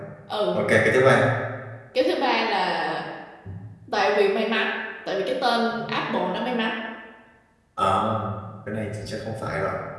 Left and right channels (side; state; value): both; identical; correlation 1.00